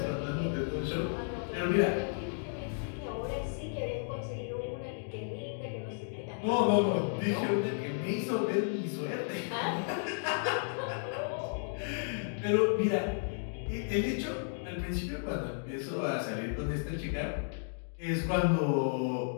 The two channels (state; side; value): silent; right; digital silence